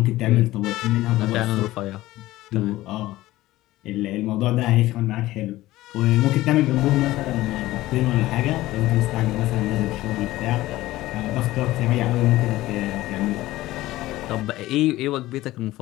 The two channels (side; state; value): right; quieter; 16.9 dB